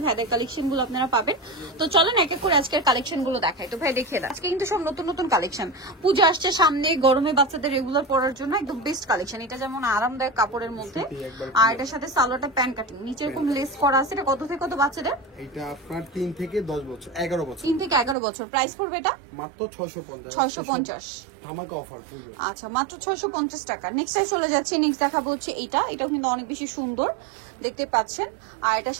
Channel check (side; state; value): left; drops out; at 18.2 s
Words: ভাইদের কালেকশনগুলো আপনারা পাবেন। তো চলেন এক এক করে আজকের কালেকশনগুলো দেখাই। তো ভাই দেখিয়ে দেন, আজকে কিন্তু সব নতুন নতুন কালেকশন। পূজা আসছে সামনে, গরমে বাচ্চাদের রেগুলার পরার জন্য একদম বেস্ট কালেকশন। এটা যেমন আরামদায়ক কাপড়ের মধ্যে, আর এটার সাথে সালোয়ারটা প্যান্ট কাটিং, নিচে এরকম লেস করা আছে। এটা কত থেকে কত বাচ্চাদের? এটা আপনার 3 থেকে 10 বছর 11 বছর 3 থেকে 11 বছর। প্রাইস পড়বে এটা মাত্র 650 650। ধামাকা অফার পুরো। আচ্ছা, মাত্র 650 টাকা। নেক্সট চলে যাচ্ছি, নেক্সট দেখাবো হচ্ছে এটাও কিন্তু অনেক বেশি সুন্দর দেখতে পাচ্ছেন। আর এটার